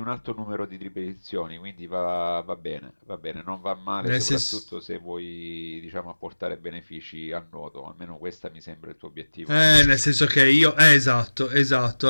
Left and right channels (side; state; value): both; inverted; correlation -1.00